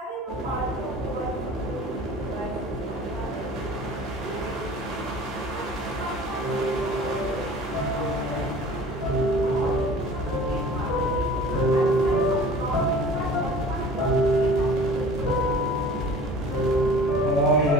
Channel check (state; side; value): normal; both; correlation 0.44